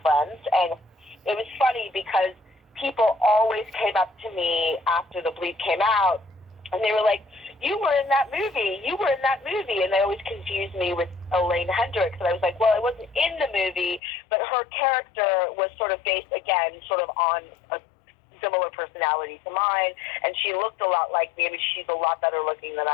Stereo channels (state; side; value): drops out; right; at 14.0 s